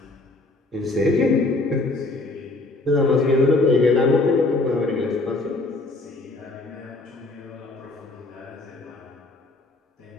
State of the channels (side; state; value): right; quieter; 3.1 dB